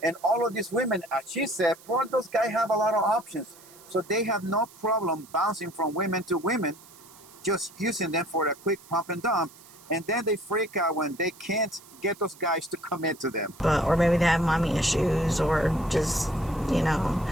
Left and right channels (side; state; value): right; noise; hiss, 22 dB below the sound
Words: and all of these women, as she said, probably those guys have a lot of options. So they have no problem bouncing from women to women, just using them for a quick pump and dump, and then they freak out when they can't get those guys to commit to them. Or maybe they have mommy issues, or just, you